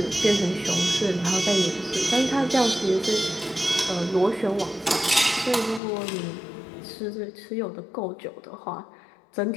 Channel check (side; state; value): right; drops out; at 5.8 s